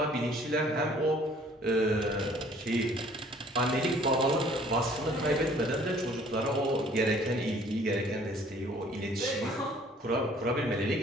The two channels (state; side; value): normal; both; correlation 0.56